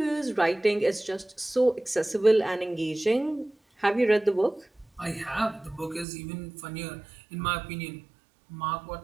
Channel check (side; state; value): left; drops out; at 6.1 s